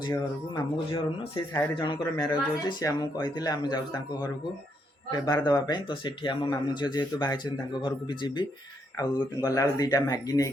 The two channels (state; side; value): normal; both; correlation 0.76